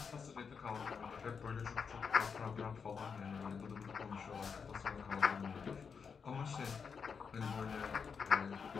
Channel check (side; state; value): right; quieter; 6.0 dB